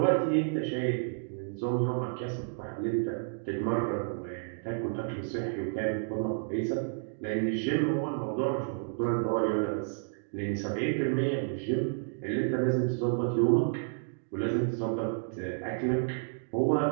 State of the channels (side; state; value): left; silent; digital silence